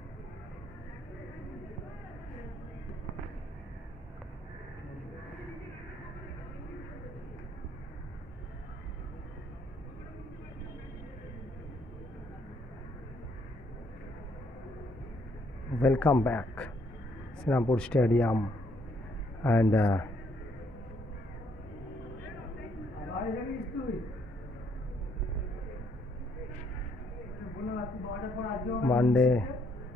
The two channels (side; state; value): both; normal; correlation 0.69